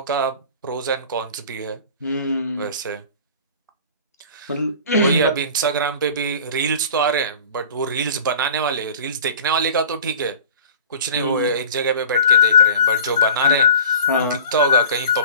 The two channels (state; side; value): inverted; both; correlation -0.41